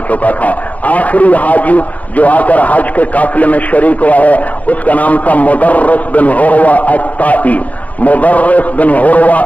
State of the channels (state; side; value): late; right; 0.072 ms